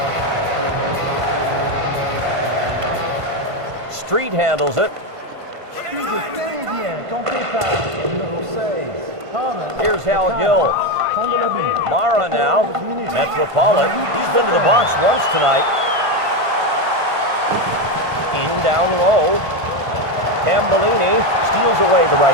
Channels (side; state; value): left; late; 1.5 ms